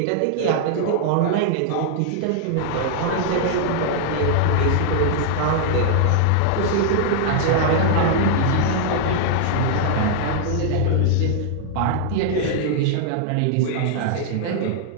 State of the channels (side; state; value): both; different; correlation -0.01